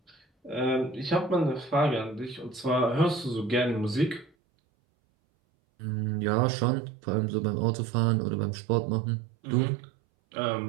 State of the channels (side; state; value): left; drops out; at 4.3 s